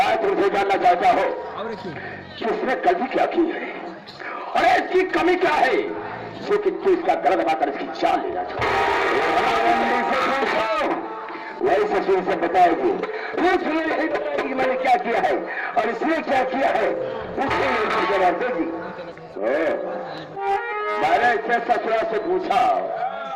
तुमसे जानना चाहता हूँ कि उसने गलती क्या की है और इसकी कमी क्या है जो कि तू इसका गला दबाकर इसकी जान लेना वही ससुर से बताएगी उसने नहीं बताएगी मैंने क्या किया है और इसने क्या किया है उसने जवाब देगी मैंने इससे ससुरा से पूछा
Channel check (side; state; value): both; identical; correlation 1.00